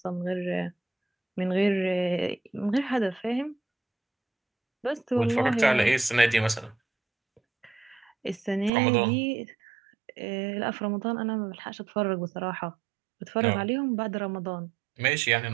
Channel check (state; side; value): drops out; left; at 8.7 s